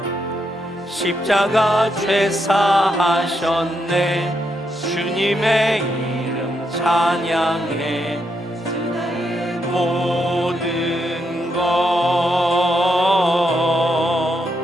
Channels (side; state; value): both; normal; correlation 0.80